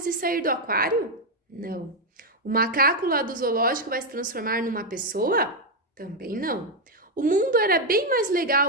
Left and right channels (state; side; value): normal; both; correlation 0.03